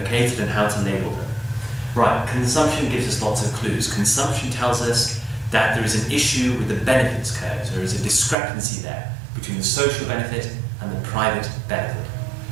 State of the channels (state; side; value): drops out; left; at 8.3 s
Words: and how to label them. Right, consumption gives us lots of clues. Consumption tells us that there is an issue with the benefits curves. There is a discrepancy there between the social benefit and the private benefit.